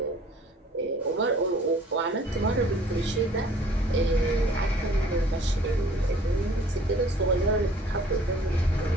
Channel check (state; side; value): normal; both; correlation 0.54